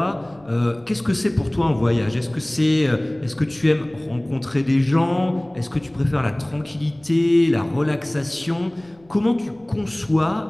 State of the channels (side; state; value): left; noise; rumble, 30 dB below the sound